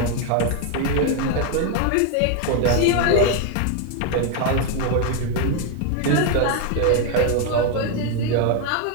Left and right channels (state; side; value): different; both; correlation 0.01